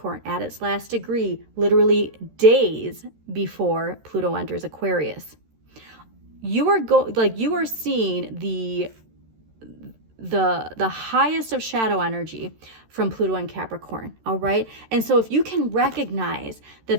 at its last degree, literally days before Pluto enters Aquarius. You are seeing the highest of shadow energy from Pluto and Capricorn, all right? And so if you can recognize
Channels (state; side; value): late; left; 13 ms